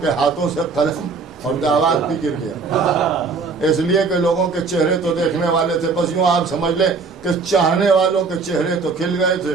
کے ہاتھوں سے قلم اور دعوات بھی گر گیا، اس لیے کہ لوگوں کے چہرے تو دیکھنے والے تھے، بس یوں آپ سمجھ لیں کہ چاہنے والوں کے چہرے تو کھل گئے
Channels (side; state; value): left; quieter; 4.6 dB